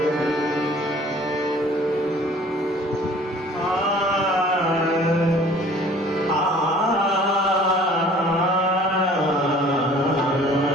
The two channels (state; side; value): normal; both; correlation 0.51